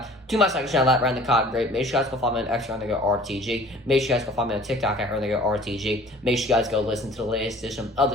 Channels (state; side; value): normal; both; correlation 0.49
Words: to my second channel at Run the Cotton Great. Make sure you guys go follow me on X at RTG. Make sure you guys go follow me on TikTok at RTG. Make sure you guys go listen to the latest edition of